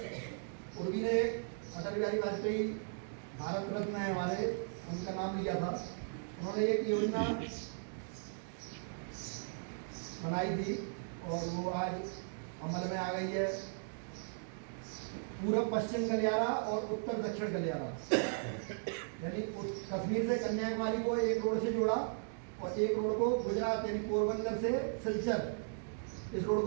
उर्वी ने अटल बिहारी वाजपेयी भारत रत्न है हमारे, उनका नाम लिया था। उन्होंने एक योजना बनाई थी और वो आज अमल में आ गई है। पूर्व पश्चिम गलियारा और उत्तर दक्षिण गलियारा, यानी कश्मीर से कन्याकुमारी को एक रोड से जोड़ा और एक रोड को गुजरात यानी पोरबंदर से सिलचर इस रोड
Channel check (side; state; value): left; silent; digital silence